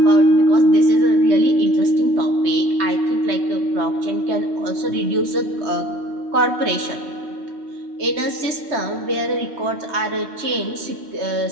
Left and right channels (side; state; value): left; late; 3.2 ms